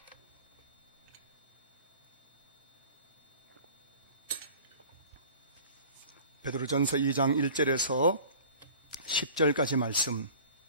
베드로전서 2장 1절에서 10절까지 말씀,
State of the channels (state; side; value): inverted; both; correlation -0.44